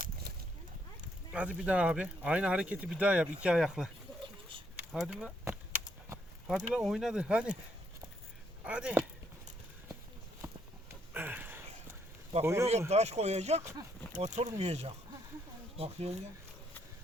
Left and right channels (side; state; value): both; normal; correlation 0.73